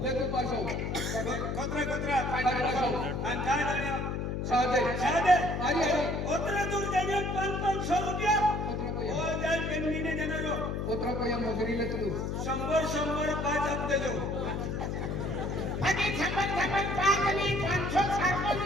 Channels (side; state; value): left; noise; hum, 2 dB below the sound